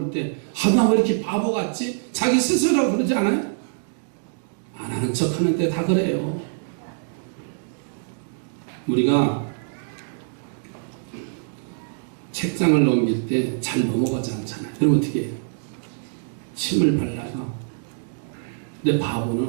때, 나 왜 이렇게 바보 같지? 자기 스스로 그러지 않아요? 안 하는 척 하는데 다 그래요. 우리가 책장을 넘길 때 잘 넘어가지 않잖아요. 그럼 어떻게 해요? 침을 발라요. 근데 바보는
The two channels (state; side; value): silent; left; digital silence